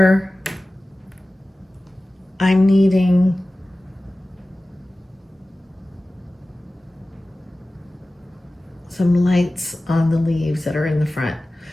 I'm needing some lights on the leaves that are in the front.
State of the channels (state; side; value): normal; both; correlation 0.96